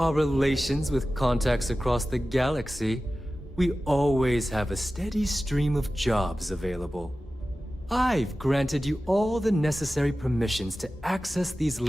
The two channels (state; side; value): normal; both; correlation 0.95